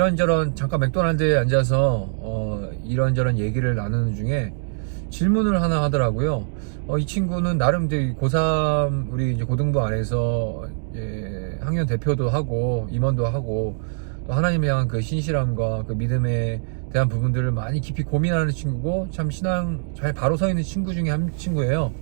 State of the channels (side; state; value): left; silent; digital silence